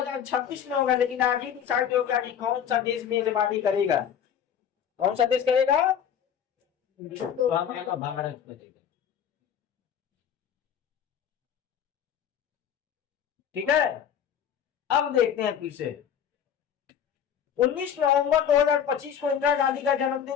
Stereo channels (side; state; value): right; quieter; 8.6 dB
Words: में होगा, लेकिन आगे डिसाइड होगा कि कौन सा देश मेजबानी करेगा, कौन सा देश करेगा, तो हमारा भारत करेगा, ठीक है। अब देखते हैं फिर से, 19 नवंबर 2025 को इंदिरा गांधी का